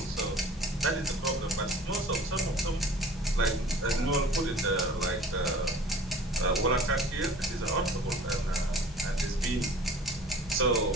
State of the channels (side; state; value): both; normal; correlation 0.45